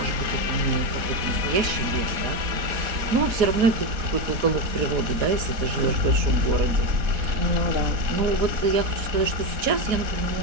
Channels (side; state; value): left; late; 4.1 ms